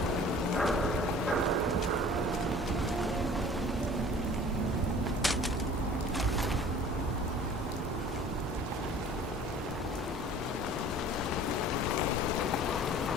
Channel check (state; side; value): normal; both; correlation 0.47